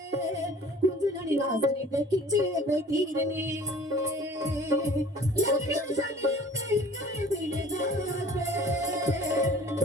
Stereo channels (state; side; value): normal; both; correlation 0.48